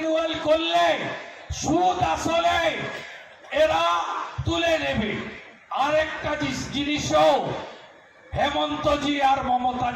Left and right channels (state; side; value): identical; both; correlation 1.00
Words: করলে সুদ আসলে এরা তুলে নেবে। আরেকটা জিনিসও হেমন্তজি আর